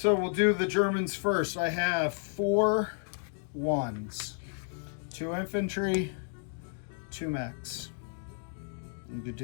we'll do the Germans first. I have 4 1s, 2 infantry, 2 mechs. And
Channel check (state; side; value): silent; right; 57 dB below the other